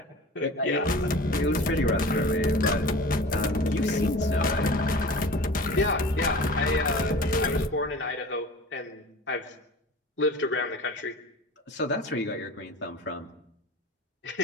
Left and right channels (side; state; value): both; normal; correlation 0.39